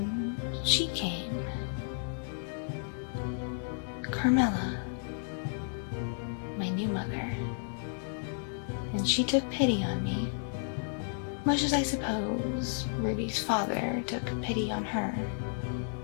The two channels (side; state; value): right; silent; digital silence